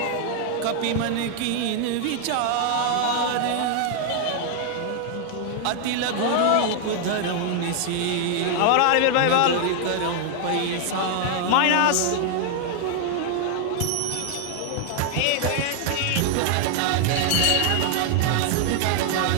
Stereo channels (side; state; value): both; different; correlation 0.00